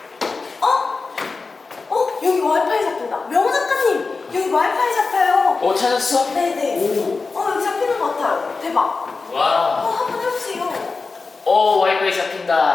여기 와이파이 잡힌다. 명호 작가님, 여기 와이파이 잡혀요. 찾았어? 네네. 여기 잡히는 것 같아요. 대박. 와. 한번 해보세요. 와이파이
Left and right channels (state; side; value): quieter; right; 4.2 dB